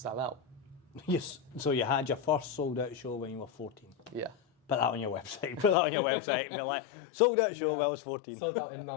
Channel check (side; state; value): right; drops out; at 5.8 s